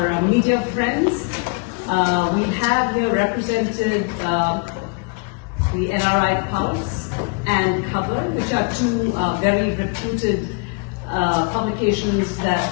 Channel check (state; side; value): quieter; right; 34.9 dB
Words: media friends. We have here represented the NRI Pulse and Cover, which are two very reputed publications that